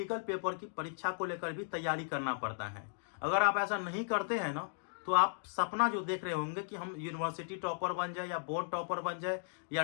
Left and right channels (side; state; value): right; silent; digital silence